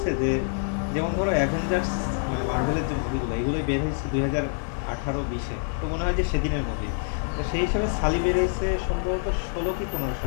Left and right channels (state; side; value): silent; right; 61 dB below the other